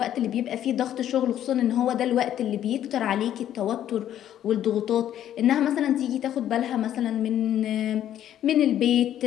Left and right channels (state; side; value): quieter; right; 11.2 dB